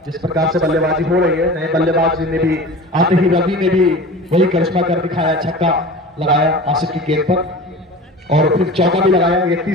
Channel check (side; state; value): both; normal; correlation 0.36